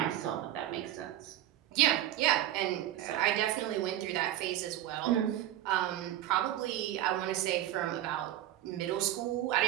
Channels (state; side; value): quieter; left; 12.9 dB